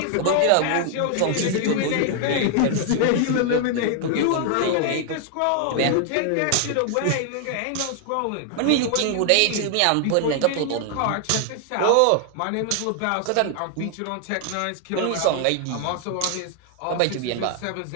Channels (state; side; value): different; both; correlation 0.00